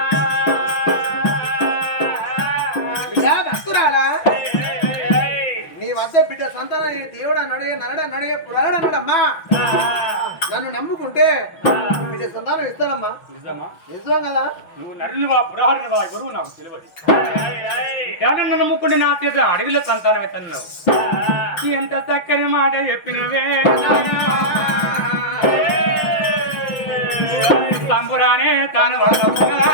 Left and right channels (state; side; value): late; right; 6.0 ms